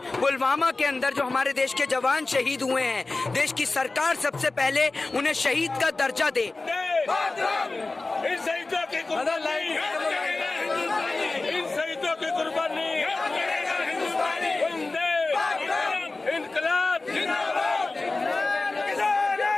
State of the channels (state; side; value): quieter; right; 3.4 dB